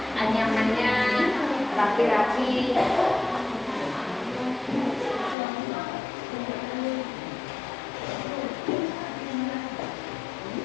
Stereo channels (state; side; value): drops out; right; at 5.4 s